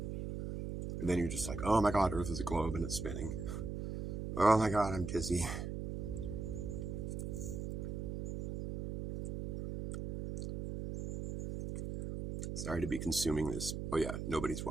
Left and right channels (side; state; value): right; noise; hum, 4 dB below the sound